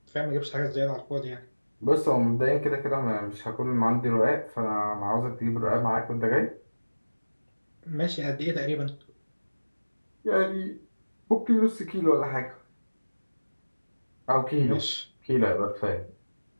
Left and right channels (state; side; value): inverted; both; correlation -1.00